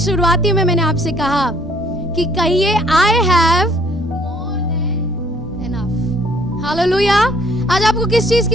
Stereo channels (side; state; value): both; normal; correlation 0.62